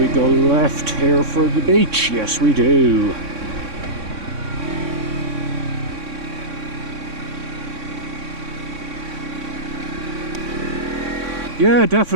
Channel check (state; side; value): late; left; 3.6 ms